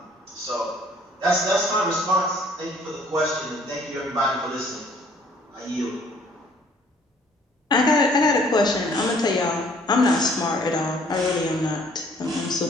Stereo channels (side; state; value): both; normal; correlation 0.59